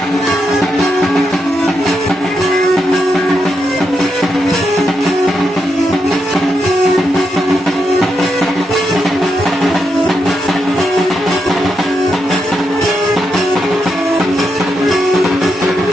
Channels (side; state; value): both; normal; correlation 0.83